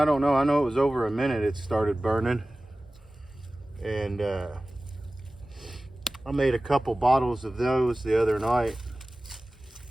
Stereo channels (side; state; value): both; normal; correlation 0.97